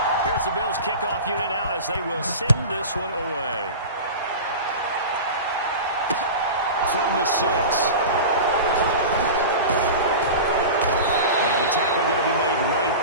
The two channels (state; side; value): inverted; both; correlation -0.30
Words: Here's the Bills kickoff unit now as they will send this one away. From the 6. And the tackle going to be made